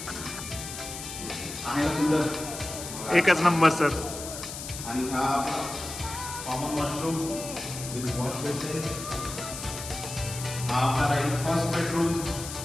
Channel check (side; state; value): left; noise; hiss, 9 dB below the sound